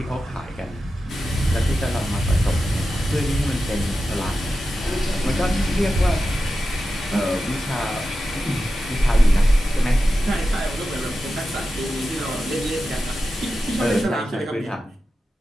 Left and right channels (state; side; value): normal; both; correlation 0.92